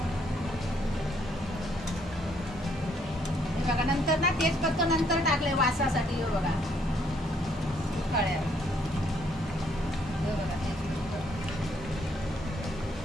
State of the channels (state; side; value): normal; both; correlation 0.69